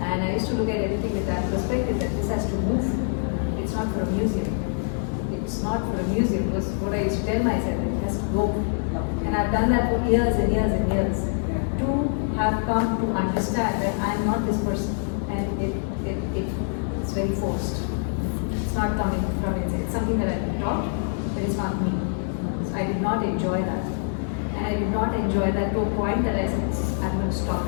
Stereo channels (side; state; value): right; silent; 62 dB below the other